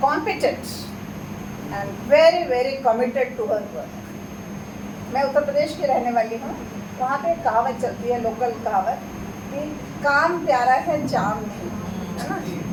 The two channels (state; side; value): identical; both; correlation 1.00